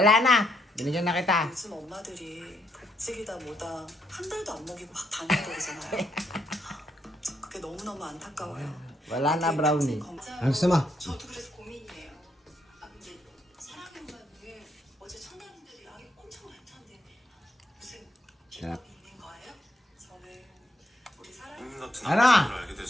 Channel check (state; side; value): normal; both; correlation 0.76